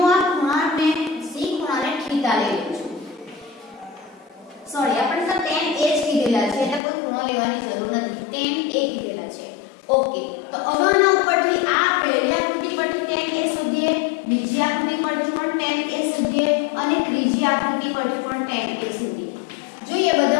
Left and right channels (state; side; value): drops out; right; at 6.8 s